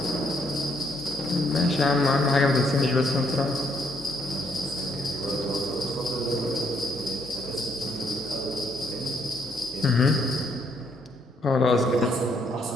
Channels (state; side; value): normal; both; correlation 0.71